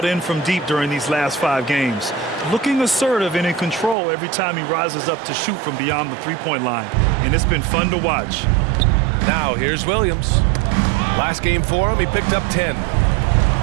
in from deep during these last 5 games. Looking assertive and in control every time he rises up to shoot from beyond the three-point line. And it's been fun to watch. Now here's Williams. Last game for him, he picked up 10.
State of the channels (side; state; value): left; drops out; at 4.0 s